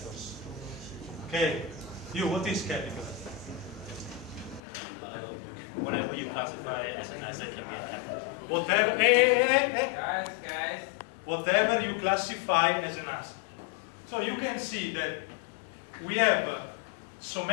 Okay. You, what is capital? Whatever you classify as an asset can be a capital. Whatever, Guys. whatever you classify as an asset. So you can see that we have so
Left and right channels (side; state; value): right; drops out; at 4.6 s